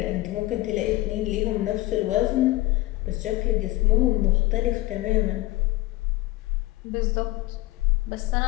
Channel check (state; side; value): quieter; right; 18.5 dB